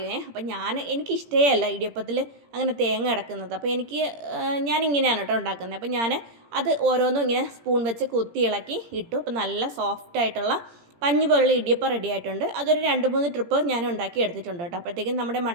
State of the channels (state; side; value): late; left; 17 ms